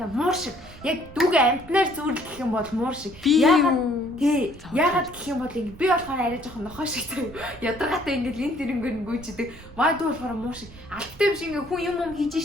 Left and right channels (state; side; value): noise; right; rumble, 19 dB below the sound